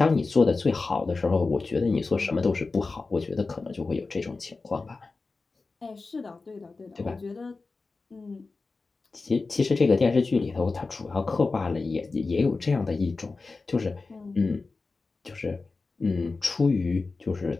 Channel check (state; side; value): quieter; right; 3.9 dB